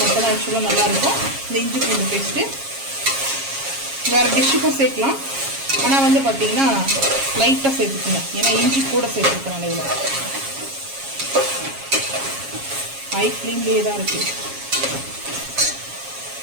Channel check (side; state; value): left; late; 7.3 ms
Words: மட்டும் தான் ஆக்சுவலாக நல்லாயிருக்கும் இந்த இஞ்சி பூண்டு பேஸ்ட்டு. வேறு டிஷ்ஷுக்கும் சேர்க்கலாம், ஆனால் வந்து பார்த்தீங்கன்னா லைட்டாக சேர்த்துக்குங்க, ஏன்னா இஞ்சி கூட சேர்த்துருக்கேன். இதில் ஹை ஃப்ளேம்லேயே தான் இருக்குது.